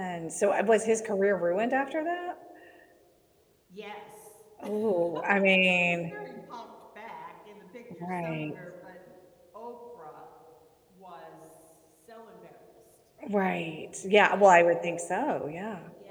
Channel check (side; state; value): both; identical; correlation 1.00